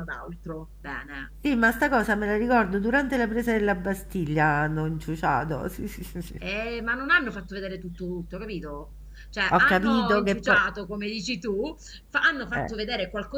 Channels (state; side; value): identical; both; correlation 1.00